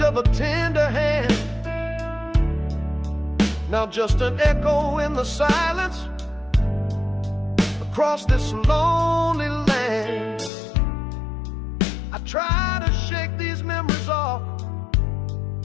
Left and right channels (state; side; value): drops out; right; at 10.5 s